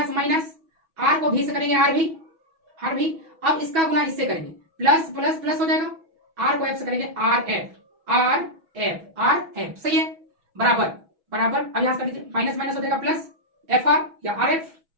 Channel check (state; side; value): late; left; 6.2 ms